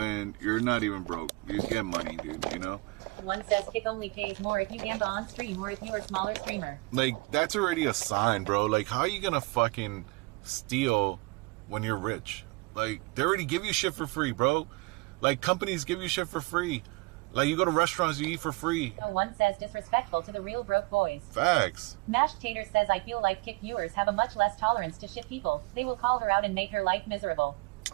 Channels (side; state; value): left; quieter; 25.4 dB